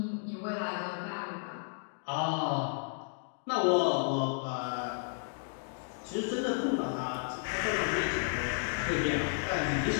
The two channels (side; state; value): right; silent; digital silence